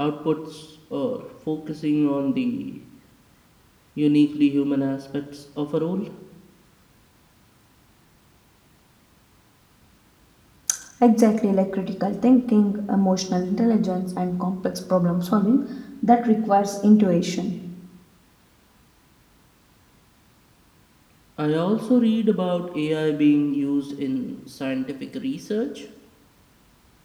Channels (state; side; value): identical; both; correlation 1.00